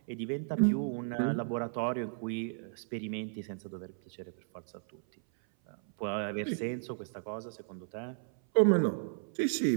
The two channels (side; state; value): left; silent; 55 dB below the other